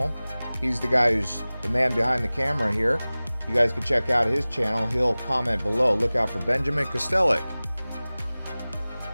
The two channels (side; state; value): both; inverted; correlation -0.99